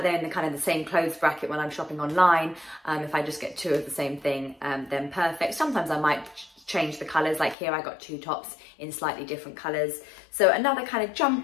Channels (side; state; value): right; drops out; at 7.6 s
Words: they're in the kind of the same clothes bracket when I'm shopping online, if I just get 2 of the same thing, then perfect. Sometimes I might change the colours, like here I got 2 tops in slightly different colours. So another kind of